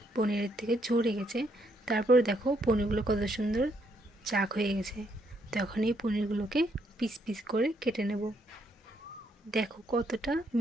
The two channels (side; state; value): both; normal; correlation 0.73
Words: পনিরের থেকে ঝরে গেছে, তারপরে দেখো পনিরগুলো কত সুন্দর চাক হয়ে গেছে। তখন এই পনিরগুলোকে পিস পিস করে কেটে নেব। দেখো কতটা